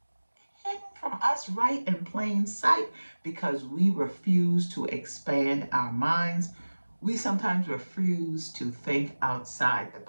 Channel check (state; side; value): inverted; both; correlation -1.00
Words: hidden from us right in plain sight because we refuse to expand our minds. We sometimes refuse to think outside the